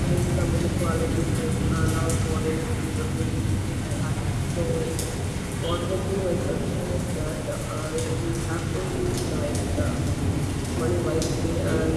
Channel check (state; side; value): identical; both; correlation 1.00